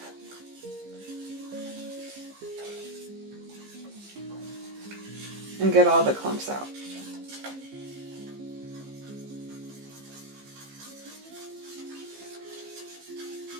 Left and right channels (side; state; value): left; late; 15 ms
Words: And get all the clumps out.